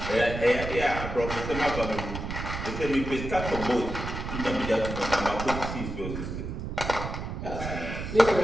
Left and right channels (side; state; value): right; noise; rumble, 6 dB below the sound